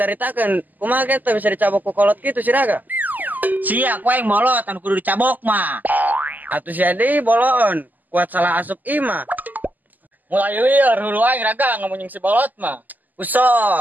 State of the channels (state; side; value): late; left; 0.083 ms